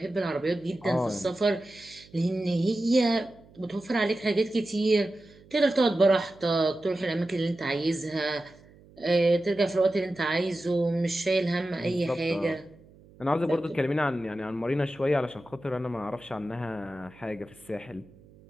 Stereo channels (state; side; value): noise; right; hum, 25 dB below the sound